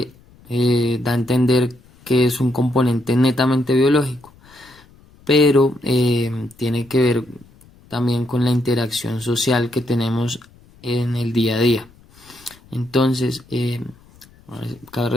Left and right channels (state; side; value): noise; left; rumble, 27 dB below the sound